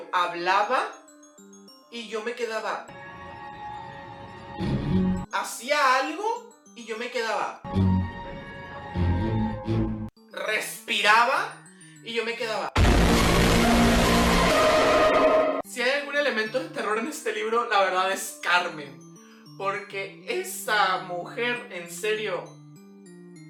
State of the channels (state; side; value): identical; both; correlation 1.00